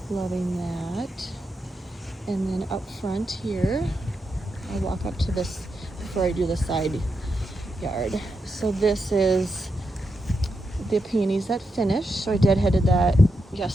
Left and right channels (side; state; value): both; normal; correlation 0.85